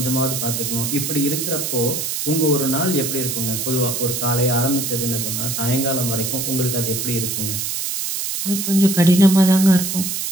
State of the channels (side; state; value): right; noise; hiss, 3 dB below the sound